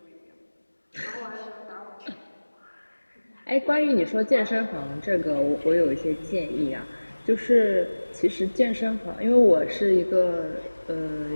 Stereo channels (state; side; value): inverted; both; correlation -1.00